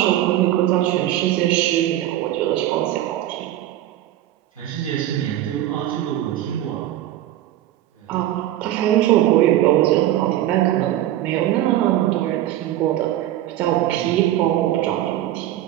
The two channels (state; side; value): quieter; left; 13.4 dB